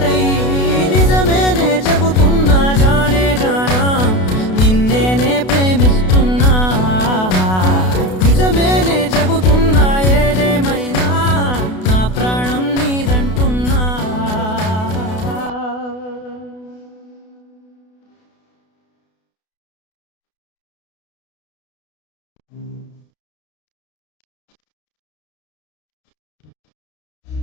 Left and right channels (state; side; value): late; right; 32 ms